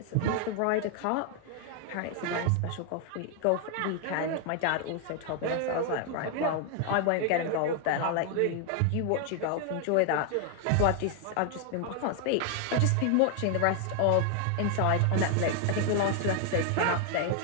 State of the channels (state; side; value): different; both; correlation 0.00